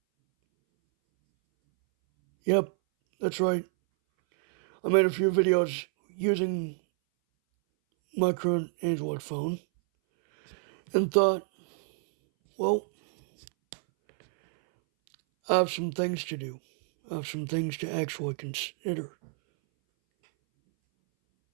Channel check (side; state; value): left; silent; 59 dB below the other